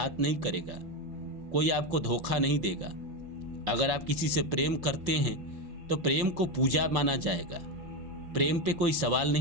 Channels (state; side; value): late; left; 5.8 ms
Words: नहीं करेगा, कोई आपको धोखा नहीं देगा। अगर आप किसी से प्रेम करते हैं तो प्रेम को पूजा माना जाएगा, प्रेम पे कोई सवाल